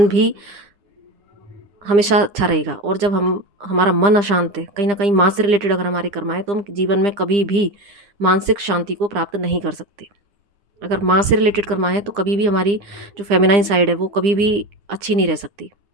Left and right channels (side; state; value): left; late; 9.9 ms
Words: भी हमेशा अच्छा रहेगा। और जब हमारा मन अशांत है, कहीं ना कहीं माँ से रिलेटेड अगर हमारे कर्म है, तो हम जीवन में कभी भी मानसिक शांति को प्राप्त नहीं कर सकते। अगर माँ से रिलेटेड कर्मा है तो कभी भी हमारी जो फेमिनाइन साइड है वो कभी भी अच्छी नहीं रह सकती।